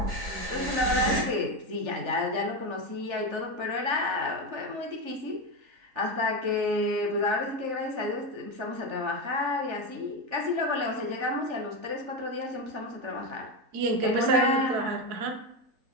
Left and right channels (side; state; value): left; late; 3.4 ms